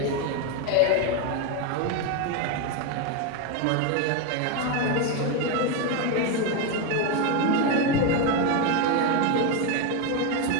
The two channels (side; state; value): both; different; correlation 0.03